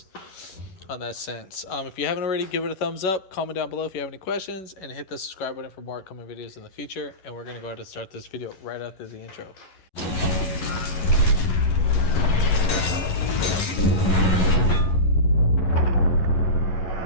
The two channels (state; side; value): late; right; 11 ms